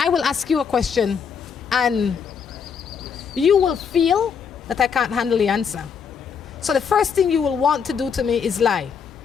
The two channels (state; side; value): quieter; right; 6.6 dB